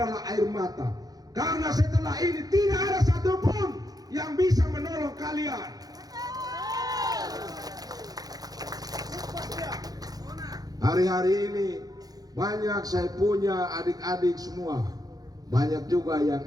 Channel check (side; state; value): left; late; 0.18 ms